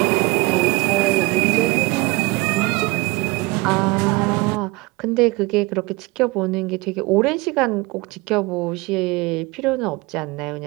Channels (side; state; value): left; quieter; 23.0 dB